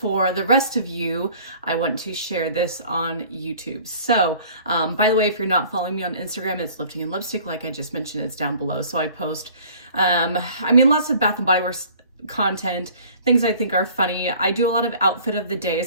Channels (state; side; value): inverted; both; correlation -0.50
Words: the rest of you, I want to share this on YouTube. So, by the way, if you're not following me on Instagram, it's Lifting and Lipstick. Like I just mentioned, it's down below. So I post, lots of Bath and Body Works content, things I think are funny. I do a lot of outfit of the day,